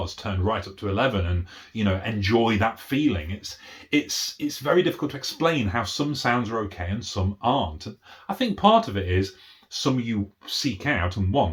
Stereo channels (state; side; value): identical; both; correlation 1.00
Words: turned right up to 11 and, enjoy that feeling. It's very difficult to explain how some sounds are okay and some aren't. And I think part of it is some you seek out and